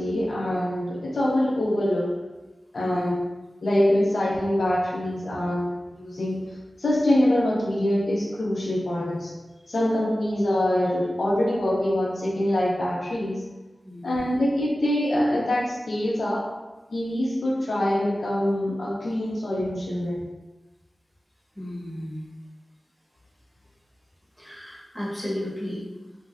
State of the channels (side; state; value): both; normal; correlation 0.95